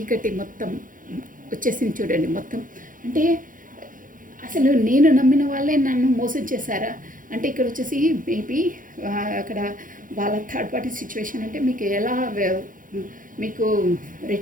మొత్తం వచ్చేసింది చూడండి మొత్తం. అంటే అసలు నేను నమ్మిన వాళ్ళే నన్ను మోసం చేశారా అంటే ఇక్కడ వచ్చేసి మేబీ అక్కడ వాళ్ళ థర్డ్ పార్టీ సిచ్యువేషన్ అంటే మీకు ఎలా మీకు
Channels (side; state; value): left; late; 0.39 ms